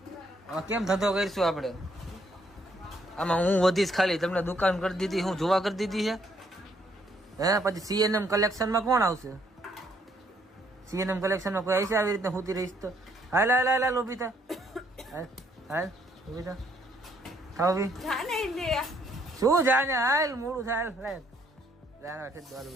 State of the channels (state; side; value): normal; both; correlation 0.69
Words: આમાં કેમ ધંધો કરીશું આપણે? આમાં હું વધીશ ખાલી, તમને દુકાન કરી દીધી, હું જોવા કરી દીધી છે હે. પછી સીએનએમ કલેક્શનમાં કોણ આવશે? સીએનએમ કલેક્શનમાં કોઈ આવશે આવી રીતે ખૂતી રહીશ તો? હાલ હાલ હાલ હાલ ઉભી થા, હાલ હાલ ઉભી થા, થાવ ઉભી. શું જાને? હાલ મોડું થાય. હાલ જાના છે દોલ